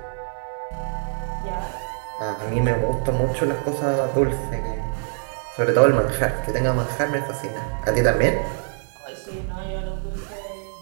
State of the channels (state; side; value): silent; left; digital silence